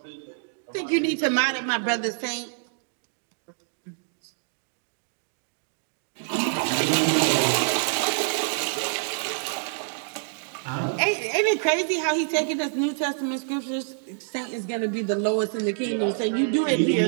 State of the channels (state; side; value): silent; left; digital silence